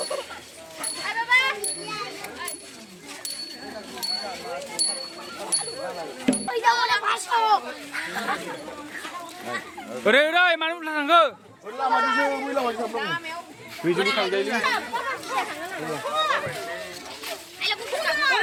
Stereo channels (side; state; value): both; identical; correlation 1.00